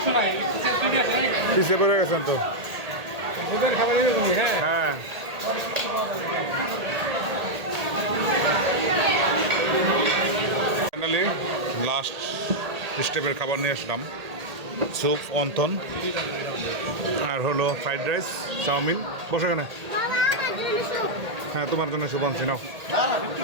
পিছিয়ে পড়ে গেছেন তো। হ্যাঁ ফাইনালি লাস্ট স্টেপের খাবার নিয়ে আসলাম। স্যুপ, অন্থন, আর হলো ফ্রাইড রাইস, চাউমিন। বসে কেন? হ্যাঁ, তোমার জন্য স্যুপ আনছি, নাও।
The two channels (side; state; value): left; late; 1.8 ms